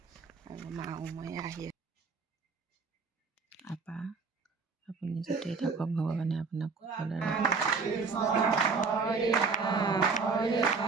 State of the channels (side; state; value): left; quieter; 4.7 dB